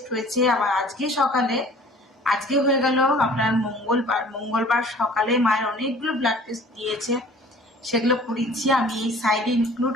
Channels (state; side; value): normal; both; correlation 0.49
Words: হয়েছে, আবার আজকে হয়ে গেল আপনার মঙ্গলবার সকালে মায়ের অনেকগুলো ব্লাড টেস্ট দিয়েছে, সেগুলো করিয়েছি। আমি এই সাইডে ইনক্লুড